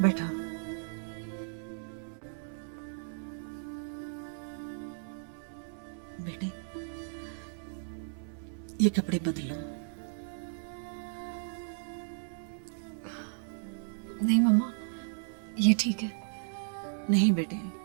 बैठा। बेटे, ये कपड़े बदलो। नहीं मम्मा, ये ठीक है। नहीं बेटे,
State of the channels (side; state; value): left; silent; 55 dB below the other